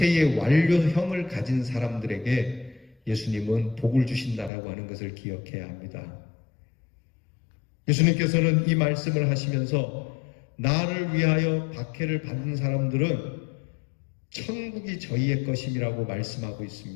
완료형을 가진 사람들에게 예수님은 복을 주신다라고 하는 것을 기억해야 합니다. 예수님께서는 이 말씀을 하시면서 나를 위하여 박해를 받는 사람들은 천국이 저희의 것임이라고 말씀하고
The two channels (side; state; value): right; drops out; at 4.5 s